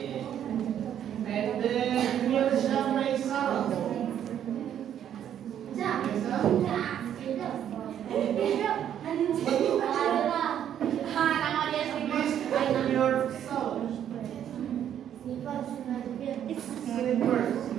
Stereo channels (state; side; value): quieter; left; 9.9 dB